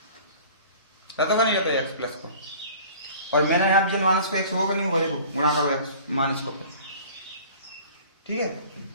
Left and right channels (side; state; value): both; inverted; correlation -0.46